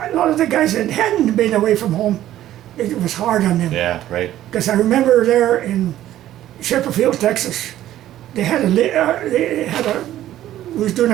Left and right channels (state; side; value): quieter; left; 13.1 dB